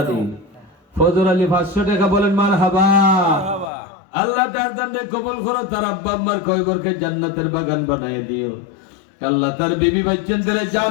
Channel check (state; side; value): drops out; right; at 3.7 s